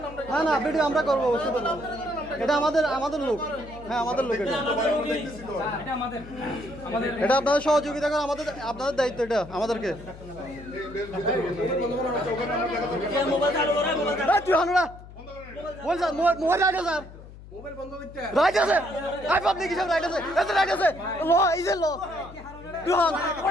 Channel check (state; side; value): noise; left; hum, 17 dB below the sound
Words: না না ভিডিও আমরা করবো, এটা আমাদের লোক। হ্যাঁ আমাদের লোক, এটা আপনাদের সহযোগিতা করে, আপনাদের দায়িত্ব, এটা আমাদেরকে। মোবাইল রাইট আছে, রাইট আছে, আই পাবলিক হিসাবে রাইট আছে, এত রাইট আছে, ল ইজ এ ল দুহান।